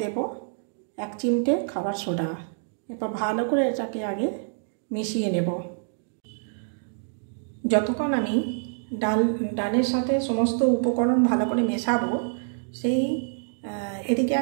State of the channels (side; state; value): left; silent; digital silence